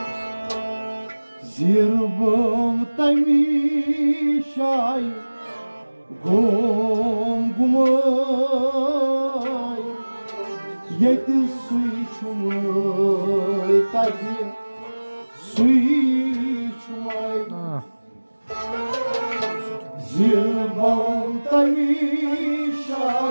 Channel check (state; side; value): inverted; both; correlation -1.00